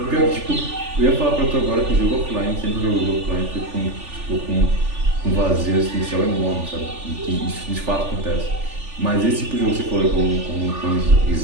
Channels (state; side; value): late; left; 3.4 ms